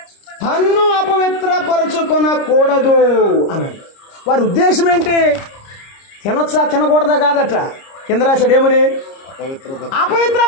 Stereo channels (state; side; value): late; right; 30 ms